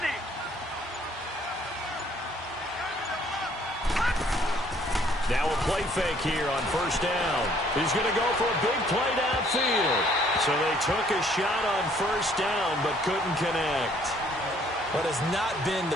Now a play fake here on first down. He's going to go for a big play downfield. So they took a shot on first down but couldn't connect. What has not been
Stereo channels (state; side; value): normal; both; correlation 0.62